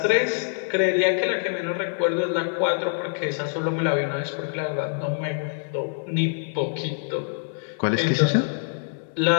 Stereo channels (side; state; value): right; silent; 62 dB below the other